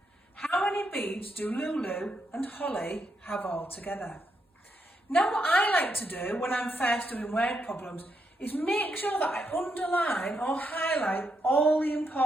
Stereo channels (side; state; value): both; normal; correlation 0.80